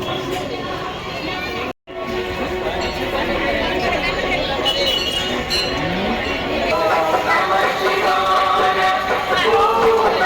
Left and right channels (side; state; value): both; identical; correlation 1.00